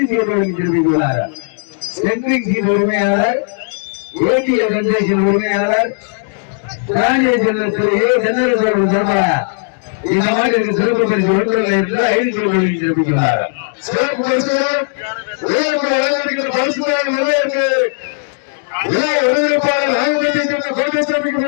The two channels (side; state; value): right; silent; digital silence